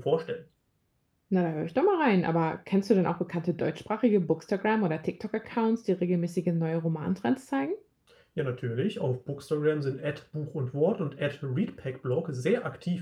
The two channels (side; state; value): both; identical; correlation 1.00